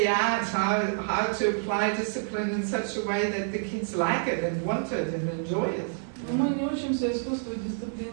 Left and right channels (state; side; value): silent; left; digital silence